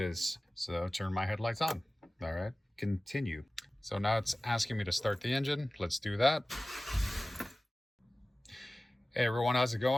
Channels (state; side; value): normal; both; correlation 0.97